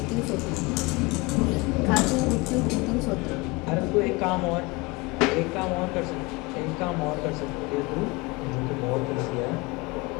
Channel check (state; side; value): quieter; right; 24.9 dB